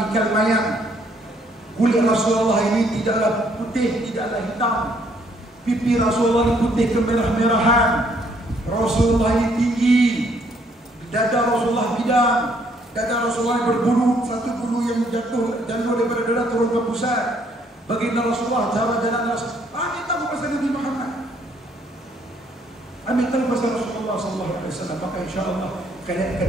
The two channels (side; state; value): both; normal; correlation 0.67